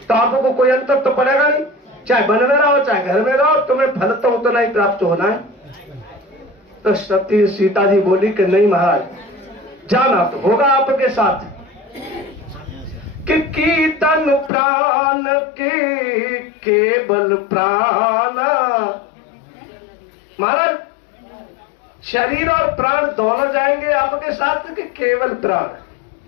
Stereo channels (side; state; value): right; drops out; at 14.5 s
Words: आपको कोई अंतर तो पड़ेगा नहीं, चाहे वन में रहो चाहे घर में रहो, तुम्हें फल तो उतना ही प्राप्त होना है। तो सती सीता जी बोली कि नहीं महाराज, जाना तो होगा आपके साथ। कि कीर्तन प्राण के केवल प्राण, महाराज शरीर और प्राण दोनों जाएंगे आपके साथ कि केवल प्राण?